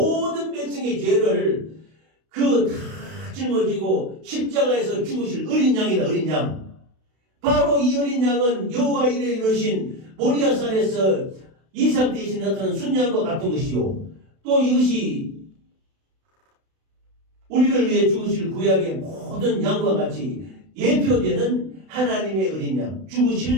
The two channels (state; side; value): late; left; 32 ms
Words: 백성의 죄를 다 짊어지고 십자가에서 죽으실 어린 양이다. 어린 양. 바로 이 어린 양은 여호와 이레 이르신 모리아산에서 이삭 대신에 나타난 순양과 같은 것이요. 또 이것이 우리를 위해 죽으실 구약의 모든 양과 같이 예표되는 하나님의 어린 양,